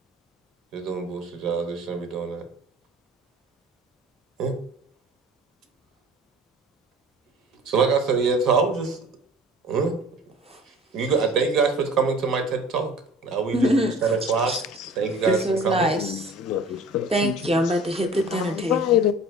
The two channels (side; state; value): both; normal; correlation 0.44